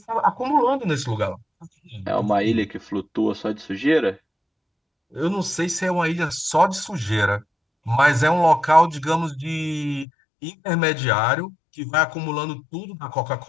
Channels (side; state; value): right; drops out; at 10.1 s